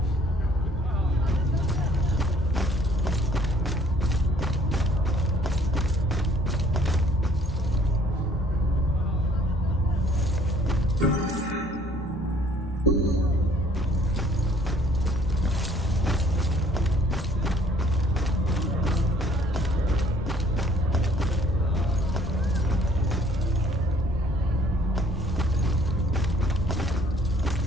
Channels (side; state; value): both; normal; correlation 0.58